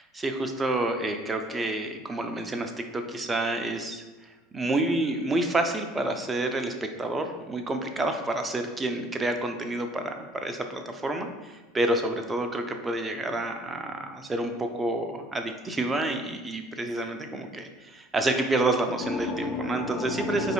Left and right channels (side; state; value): both; normal; correlation 0.60